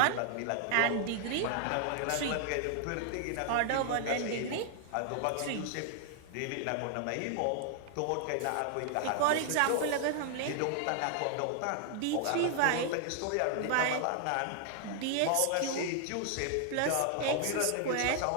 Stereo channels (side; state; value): both; different; correlation 0.00